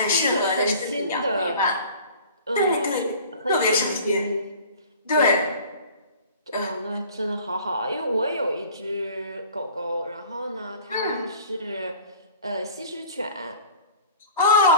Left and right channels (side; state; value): both; inverted; correlation -0.45